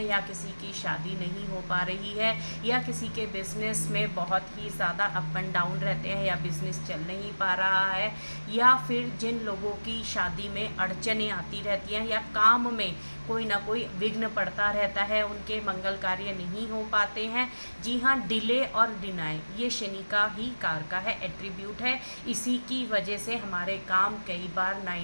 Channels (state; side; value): inverted; both; correlation -1.00